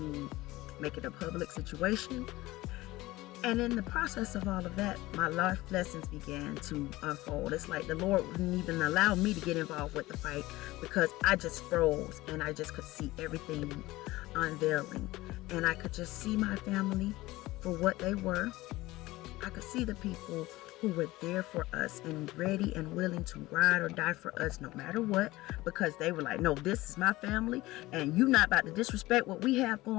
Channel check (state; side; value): quieter; right; 18.7 dB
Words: make it a public situation. And in the process of all of that, my life lessons began to unfold. It's like the Lord wouldn't even allow me to get involved with the fight, because I just froze and I just could see everything unveiling. And I could just see my family for what they were. I could see the people who were there for us and ready and willing to ride or die for us no matter what, because they were like, no, this is my family and you're not about to disrespect what we have